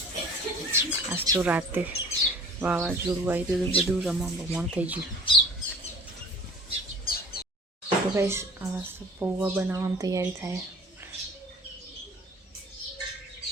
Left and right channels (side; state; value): both; normal; correlation 0.46